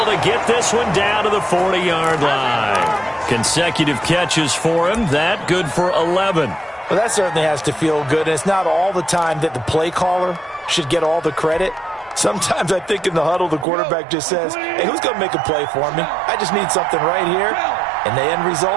to get this one down to the 40-yard line. Consecutive catches for him. That good for 11. Well, that certainly has to feel good. And it's not all the time that the play caller should get all the credit. Sometimes I think in the huddle, the quarterback just says, hey, who's going to make a play for me? I just need something right here. And the end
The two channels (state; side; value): drops out; left; at 13.7 s